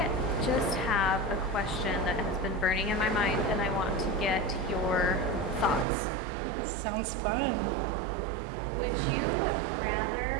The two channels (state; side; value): drops out; left; at 5.9 s